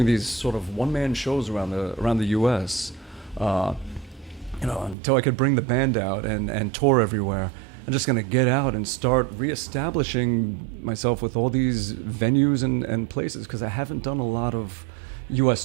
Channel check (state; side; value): drops out; left; at 5.0 s